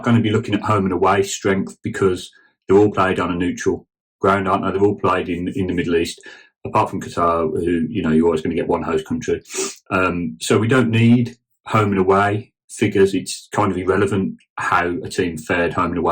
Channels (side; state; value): both; identical; correlation 1.00